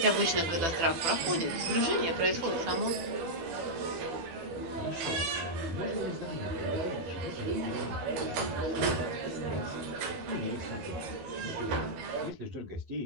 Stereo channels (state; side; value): late; left; 12 ms